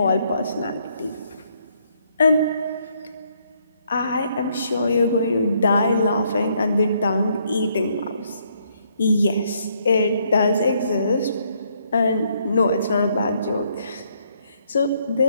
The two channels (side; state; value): both; inverted; correlation -0.71